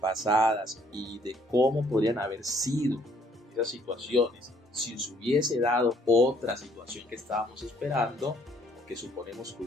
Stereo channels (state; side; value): normal; both; correlation 0.64